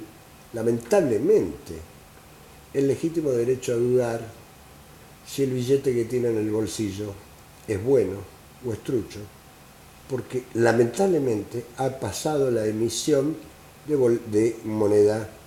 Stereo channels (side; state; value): both; identical; correlation 1.00